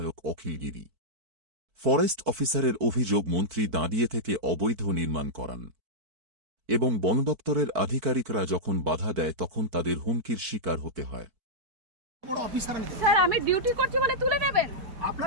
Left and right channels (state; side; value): late; left; 4.5 ms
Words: অখিল গিরি। ফরেস্ট অফিসারের অভিযোগ মন্ত্রী দাঁড়িয়ে থেকে অবৈধ নির্মাণ করান এবং বনদপ্তরের আধিকারিকরা যখন বাধা দেয় তখন তাদের হুমকির শিকার হতে হয়। স্যার আমি ডিউটি করছি বলে তুলে নেবেন?